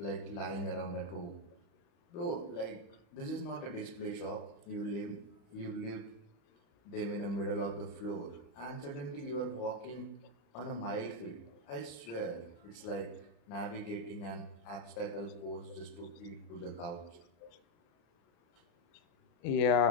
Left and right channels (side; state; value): right; late; 35 ms